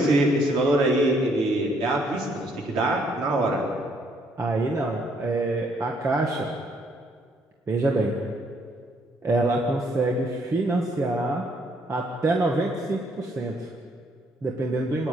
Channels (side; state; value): both; normal; correlation 0.68